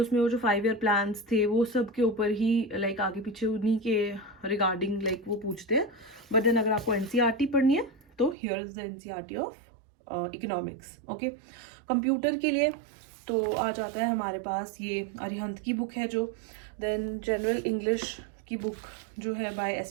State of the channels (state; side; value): drops out; left; at 8.3 s